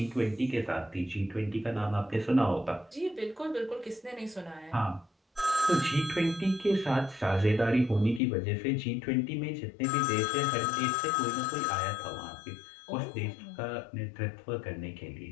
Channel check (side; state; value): right; drops out; at 8.2 s